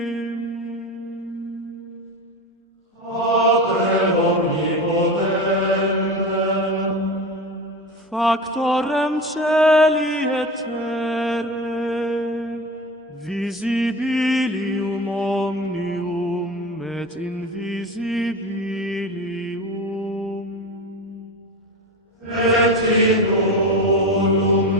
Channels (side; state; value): both; normal; correlation 0.27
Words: Patrem omnipotentem, Factorem celi et terrae, visibilium omnium et invisibilium. Et in